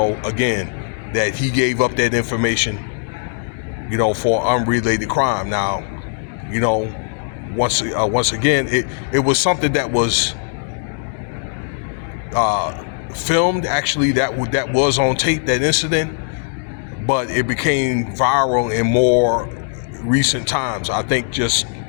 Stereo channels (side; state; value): right; silent; digital silence